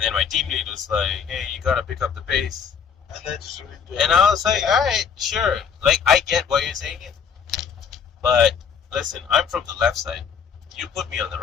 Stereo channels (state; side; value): quieter; right; 6.9 dB